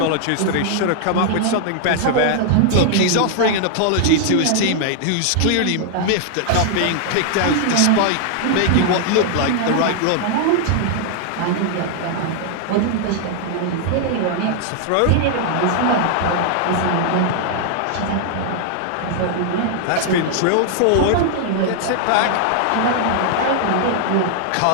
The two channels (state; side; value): different; both; correlation -0.01